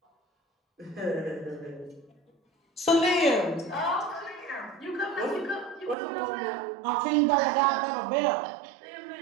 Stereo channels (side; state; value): left; drops out; at 6.0 s